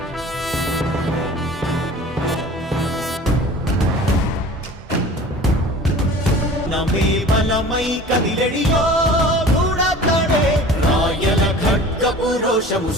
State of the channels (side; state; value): both; normal; correlation 0.42